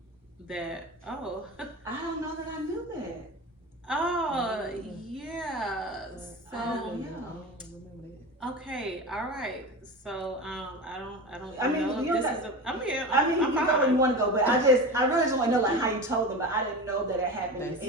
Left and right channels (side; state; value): both; normal; correlation 0.28